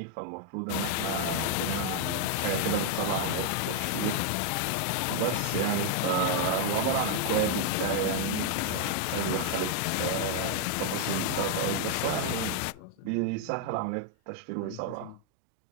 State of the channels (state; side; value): different; both; correlation 0.00